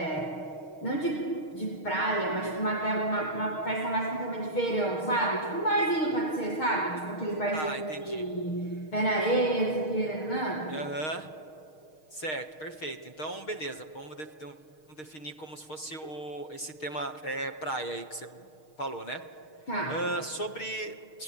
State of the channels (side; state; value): right; late; 6.5 ms